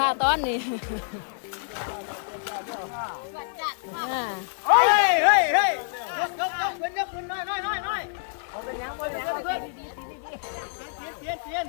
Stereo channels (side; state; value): right; silent; digital silence